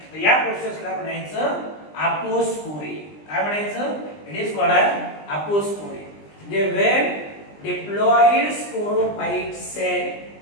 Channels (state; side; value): late; right; 20 ms